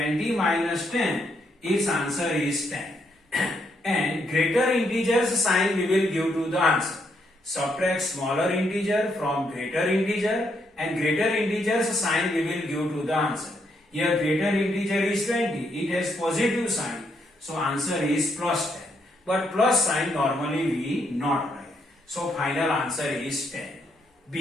minus 10, its answer is 10. And greater integers sign we will give to the answer. Subtract smaller integer from greater integer, and greater integers sign we will give to the answer. Here greater integer is 20, it has positive sign, so answer is plus 10. But plus sign normally we not write. So final answer is 10.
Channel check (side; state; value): both; normal; correlation 0.76